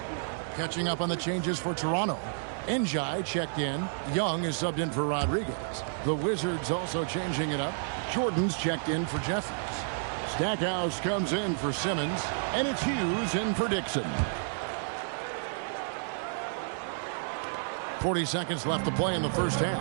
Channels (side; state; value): left; silent; 57 dB below the other